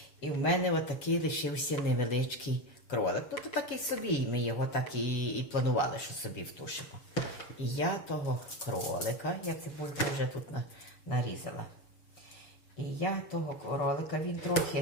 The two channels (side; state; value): right; late; 7.1 ms